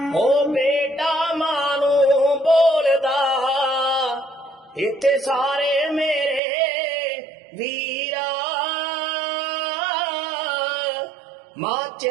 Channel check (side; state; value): left; drops out; at 6.4 s